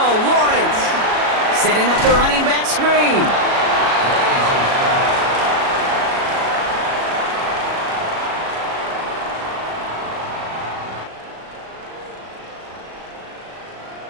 Setting up the running back screen.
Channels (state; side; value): late; left; 37 ms